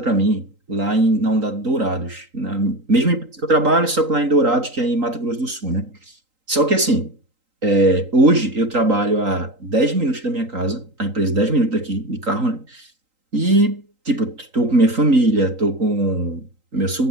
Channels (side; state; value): left; late; 3.8 ms